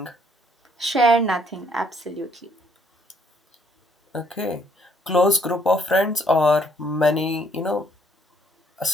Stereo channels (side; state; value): both; normal; correlation 0.67